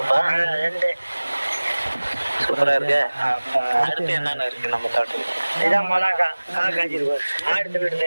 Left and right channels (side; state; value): both; inverted; correlation -1.00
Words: 2 சூப்பரா இருக்கு. அடுத்து என்னென்ன இருக்கு நம்ம தோட்டம்? இதான் மிளகா காய் காய்ச்சிருக்கு. ஆடு விடுது